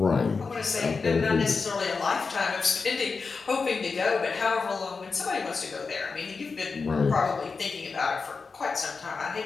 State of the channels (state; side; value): quieter; right; 4.7 dB